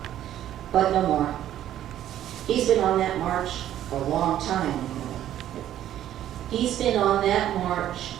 but no more. He's been on that march for a long time. He's been on that march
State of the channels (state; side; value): quieter; left; 11.9 dB